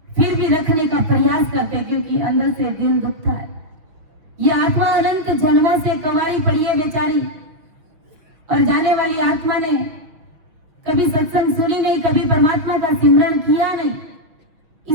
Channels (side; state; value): left; late; 6.0 ms